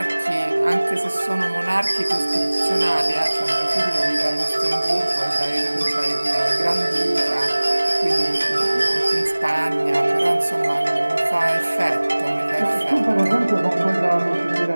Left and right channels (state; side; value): inverted; both; correlation -1.00